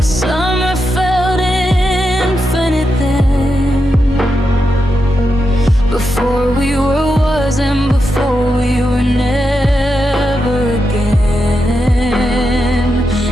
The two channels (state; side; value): normal; both; correlation 0.86